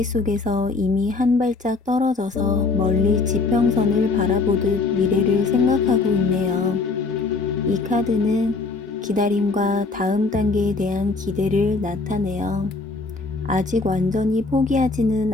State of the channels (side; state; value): right; quieter; 3.9 dB